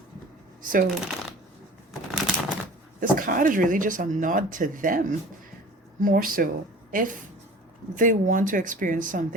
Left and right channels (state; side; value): normal; both; correlation 0.43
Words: So this card is really just a nod to them, more so. If they want to experience